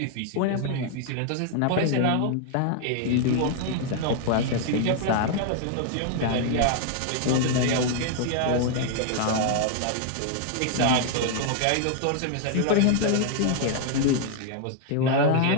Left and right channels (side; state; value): both; different; correlation 0.00